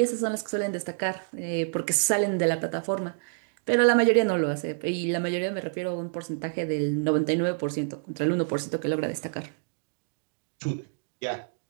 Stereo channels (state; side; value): silent; left; digital silence